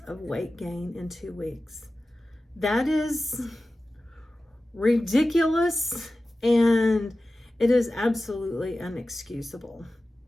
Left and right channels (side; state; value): both; normal; correlation 0.95